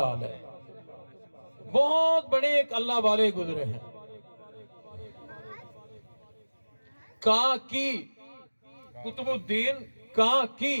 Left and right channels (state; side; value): inverted; both; correlation -1.00